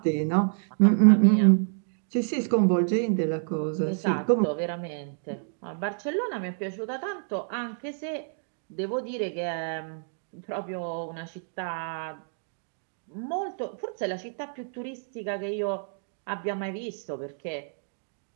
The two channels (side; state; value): left; silent; digital silence